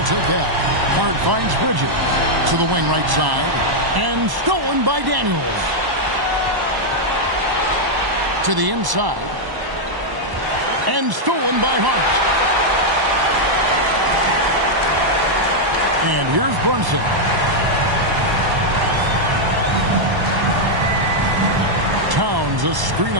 take that. Hart finds Bridges to the wing right side. And stolen by Daniels. To the inside. And stolen by Hart. And here's Brunson. Towns, a screen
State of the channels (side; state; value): left; late; 1.1 ms